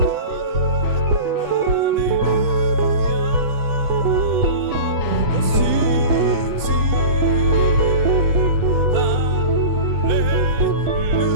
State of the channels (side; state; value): left; late; 8.2 ms